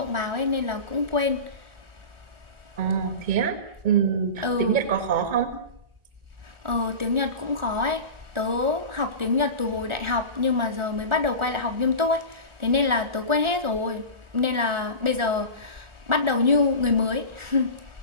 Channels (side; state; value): left; late; 1.4 ms